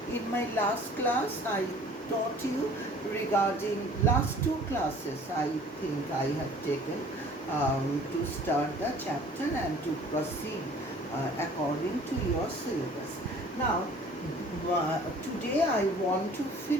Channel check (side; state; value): both; normal; correlation 0.50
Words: In my last class I taught you regarding last two classes I think I have taken to start the chapter and to proceed according to your syllabus. Now today I want to